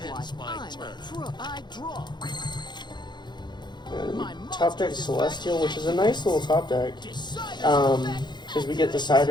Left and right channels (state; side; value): late; right; 0.21 ms